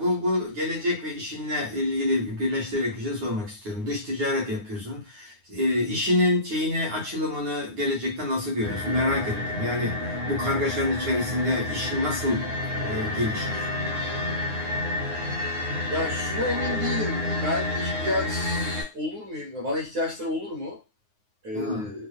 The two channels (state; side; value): late; left; 9.6 ms